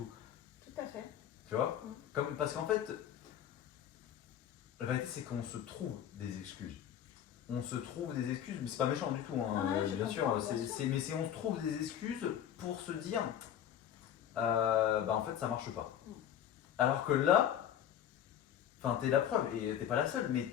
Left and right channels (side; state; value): right; quieter; 10.1 dB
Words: tout à fait. Tu vois Mm. Parce qu'en fait, la vérité, c'est qu'on se trouve des excuses. On se trouve des excuses, mais c'est pas méchant du tout, hein, Ouais, je bien sûr. comprends, bien sûr. Mais on se trouve des excuses pour se dire, bah en fait, ça marche pas. Mm. Alors que là, enfin, t'es la preuve, et t'es pas la seule, mais